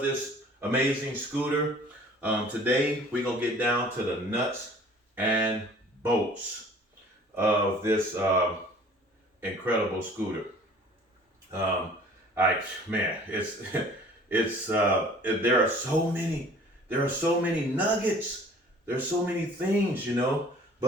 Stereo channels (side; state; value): both; normal; correlation 0.50